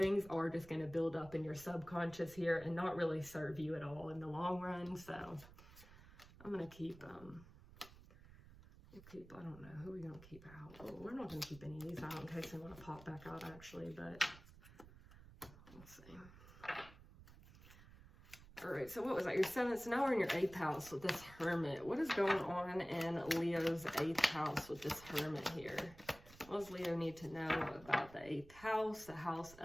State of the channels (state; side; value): noise; right; rumble, 19 dB below the sound